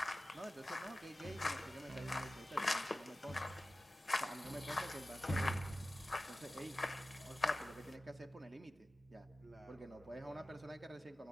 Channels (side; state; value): both; normal; correlation 0.95